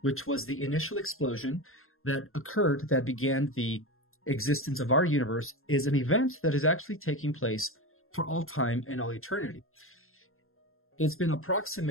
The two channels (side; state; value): right; late; 0.61 ms